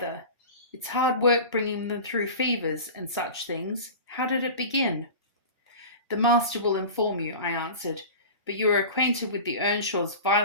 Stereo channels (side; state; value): both; inverted; correlation -0.34